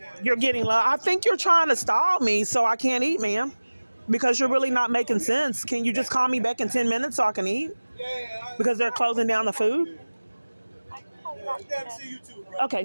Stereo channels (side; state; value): both; inverted; correlation -1.00